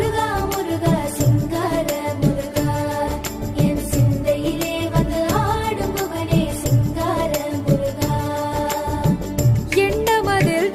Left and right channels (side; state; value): both; identical; correlation 1.00